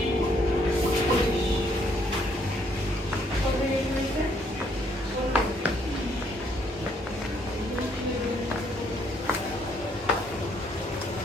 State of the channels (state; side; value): normal; both; correlation 0.69